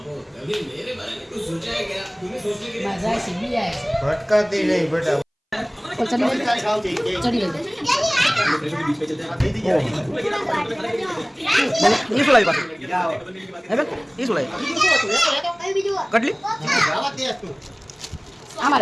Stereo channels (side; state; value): both; identical; correlation 1.00